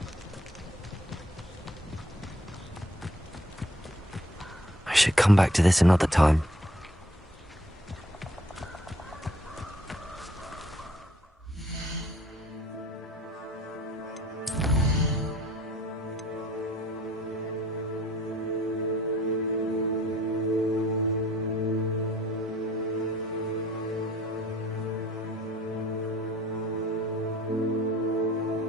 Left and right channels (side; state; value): both; normal; correlation 0.59